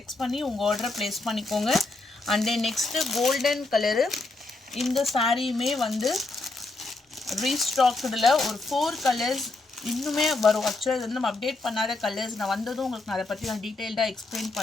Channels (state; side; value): quieter; right; 3.3 dB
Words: பண்ணி உங்கள் ஆர்டரை ப்ளேஸ் பண்ணிக்கோங்க. And then next golden colour. இந்த சாரியுமே வந்து ரீஸ்டாக்டில் ஒரு 4 கலர்ஸ் இன்னுமே வரும். ஆக்சுவலாக இது வந்து நம்ம அப்டேட் பண்ணாத கலர்ஸ். நான் வந்ததும் உங்களுக்கு நான் அதை பற்றி நான் டீட்டெயில்டாக எக்ஸ்பிளைன்